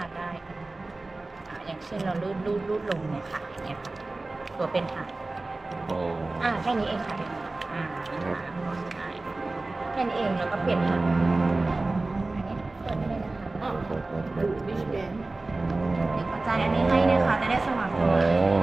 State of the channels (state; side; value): quieter; left; 3.2 dB